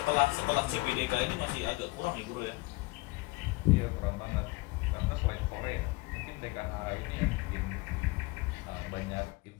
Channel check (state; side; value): quieter; right; 22.9 dB